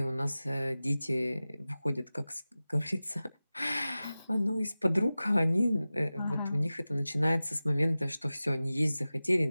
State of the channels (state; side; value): inverted; both; correlation -0.96